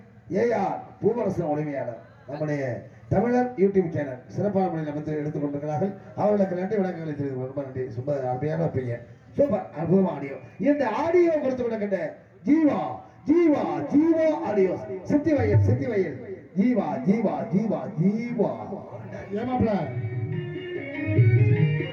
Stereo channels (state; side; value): identical; both; correlation 1.00